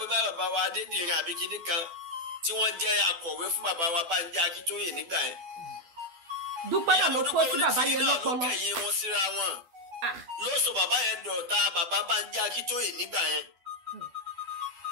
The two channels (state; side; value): late; left; 12 ms